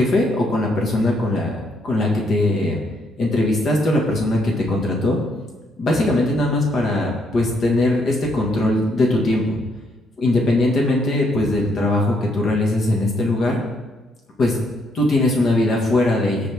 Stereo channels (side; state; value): both; normal; correlation 0.73